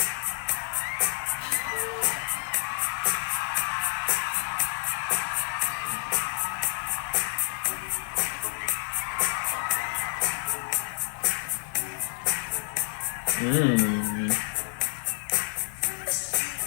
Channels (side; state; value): right; silent; digital silence